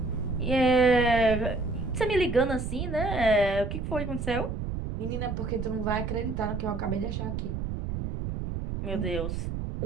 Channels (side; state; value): right; noise; rumble, 4 dB below the sound